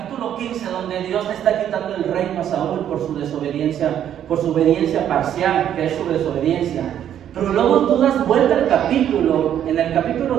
15, donde Dios le está quitando el reino a Saúl por su obediencia parcial, que es su desobediencia. Pero luego tú das vuelta al capítulo, en el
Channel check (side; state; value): left; quieter; 10.2 dB